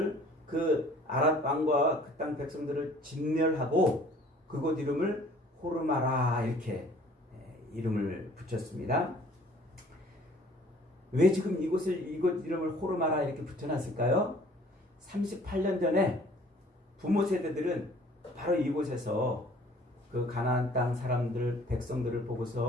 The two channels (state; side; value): normal; both; correlation 0.53